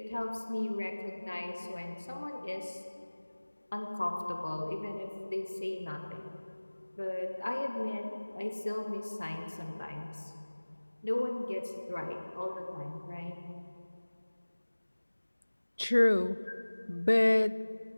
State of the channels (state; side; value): inverted; both; correlation -1.00